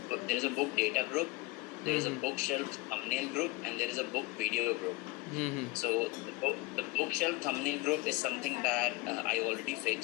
data group, there is a bookshelf thumbnail group, and there is a book video group. So the bookshelf thumbnail group is something that I already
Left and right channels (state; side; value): quieter; right; 20.9 dB